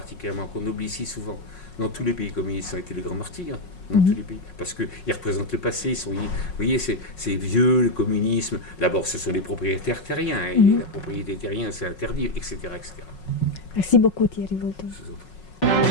qu'on oublie si souvent. Dans tous les pays communistes, ça a été les grands martyrs. Dans tous les pays. Parce qu'ils représentent le passé. Vous voyez, c'est vieux, le communisme. D'abord, ce sont les propriétaires terriens. Et la propriété terrienne, c'est interdit, etc., etc. Merci beaucoup, Thierry Volton. Je vous en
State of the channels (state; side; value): late; right; 5.5 ms